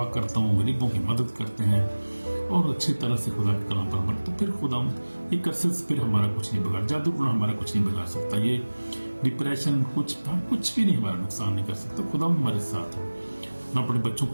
کرتا ہوں، غریبوں کی مدد کرتے ہیں، اور اچھی طرح سے خدا کے کلام پر عمل، تو پھر خدا یہ کرسے پھر ہمارا کچھ نہیں بگاڑ، جادو ٹونا ہمارا کچھ نہیں بگاڑ سکتا، یہ ڈپریشن کچھ بھی نہیں ہمارا نقصان نہیں کر سکتا. خدا ہمارے ساتھ ہے. اپنے بچوں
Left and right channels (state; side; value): inverted; both; correlation -1.00